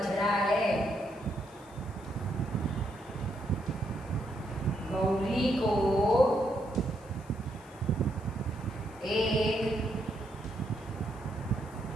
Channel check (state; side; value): noise; left; hiss, 26 dB below the sound